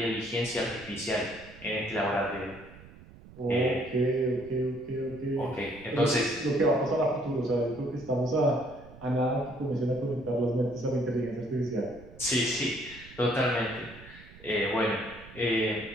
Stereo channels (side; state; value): right; noise; rumble, 19 dB below the sound